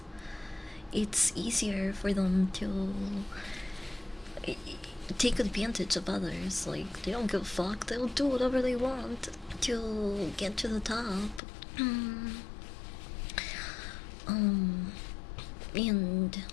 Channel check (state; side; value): drops out; right; at 11.4 s